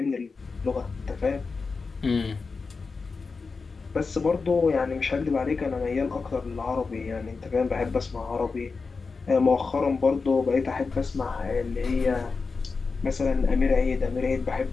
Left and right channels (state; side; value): quieter; right; 4.5 dB